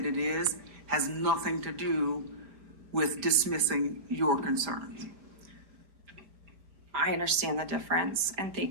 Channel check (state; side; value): late; left; 5.0 ms